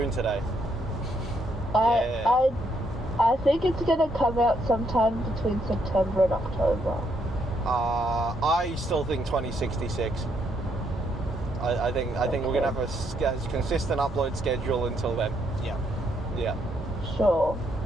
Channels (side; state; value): both; normal; correlation 0.74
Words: today. I think it's gonna come out sometime between September and October. I still think 2066. I think we're gonna have a consistent upload schedule until then. Yeah. Yeah, Sure.